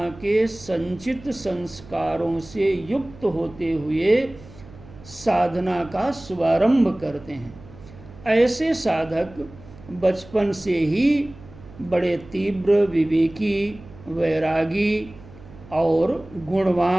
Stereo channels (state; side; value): noise; right; hum, 20 dB below the sound